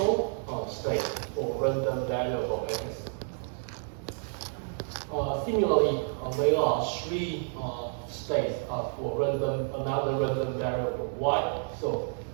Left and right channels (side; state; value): left; silent; 58 dB below the other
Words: states for random variable x. Similarly, there are 3 states for another random variable y. So